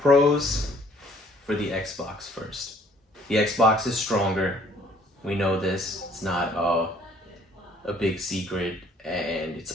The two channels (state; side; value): normal; both; correlation 0.59